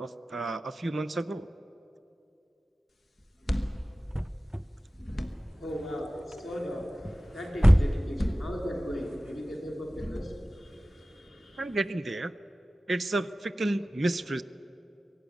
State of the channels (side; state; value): both; normal; correlation 0.96